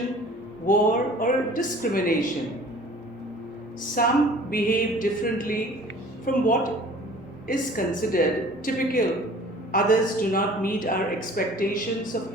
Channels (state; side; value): normal; both; correlation 0.48